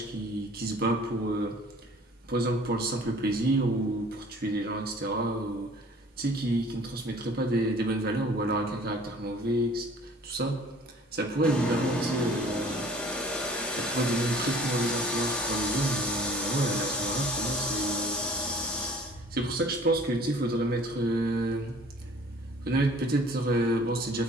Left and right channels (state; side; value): normal; both; correlation 0.51